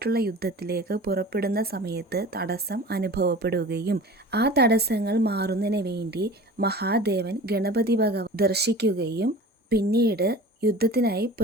യുദ്ധത്തിലേക്ക് പുറപ്പെടുന്ന സമയത്ത് തടസ്സം അനുഭവപ്പെടുകയും ആ തടസ്സങ്ങൾ മാറുന്നതിന് വേണ്ടി മഹാദേവൻ ഗണപതി ഭഗവാൻ ദർശിക്കുകയും പിന്നീട് യുദ്ധത്തിനായി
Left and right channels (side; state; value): both; normal; correlation 0.39